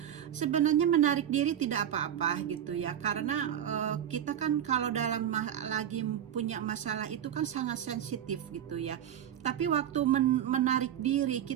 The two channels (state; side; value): quieter; left; 10.1 dB